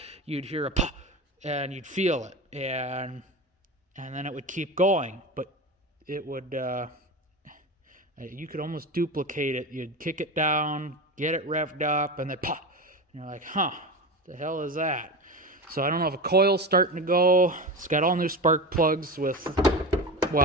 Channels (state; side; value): normal; both; correlation 0.24